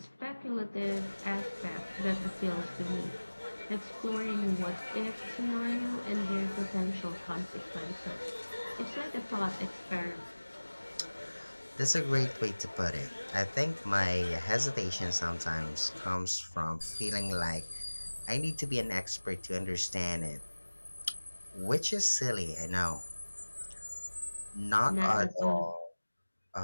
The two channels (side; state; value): both; inverted; correlation -1.00